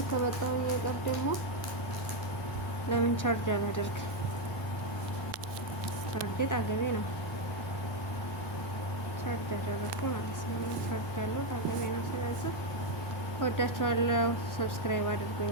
ከመጣሁ የቀር ደግሞ ለምን ቻርጅ አላደርግ? ቻርጅ አገቤ ነው ቻርጅ አደረኩ ማለት ነው። ቻርጅ ያለው አገቤ ነው። ስለዚህ ወዳችኋለሁ። ሰብስክራይብ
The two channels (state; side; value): normal; both; correlation 0.05